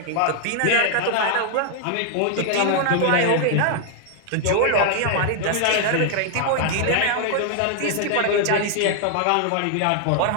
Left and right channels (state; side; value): different; both; correlation 0.00